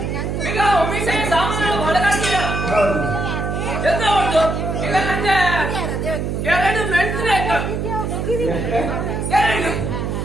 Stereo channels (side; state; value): right; noise; hum, 2 dB below the sound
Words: ಈಗ ಒಮ್ಮಿಸೆ ಸಾಮಾನು ಹೊರಗಾಡ್ತೀಯ ಎಂತ ಹೊರಟು ಈಗ ನಂಗೆ 2 ಮೆಣಸಿನ ಎರಡು